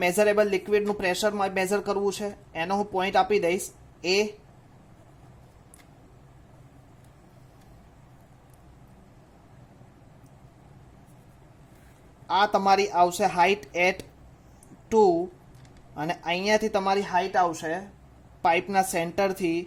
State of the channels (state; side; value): identical; both; correlation 1.00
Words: મેઝરેબલ લિક્વિડનું પ્રેશર મેઝર કરવું છે એનો હું પોઈન્ટ આપી દઈશ એ. આ તમારી આવશે હાઇટ એટ 2 અને અહીંયાથી તમારી હાઇટ આવશે પાઇપના સેન્ટરથી